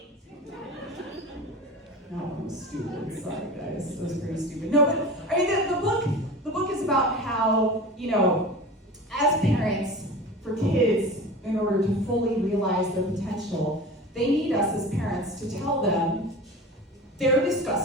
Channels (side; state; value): both; normal; correlation 0.34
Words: No, I'm stupid. Sorry, guys. That was pretty stupid. No, but I mean, the book is about how, you know, as parents, for kids, in order to fully realize their potential, they need us as parents to tell them they're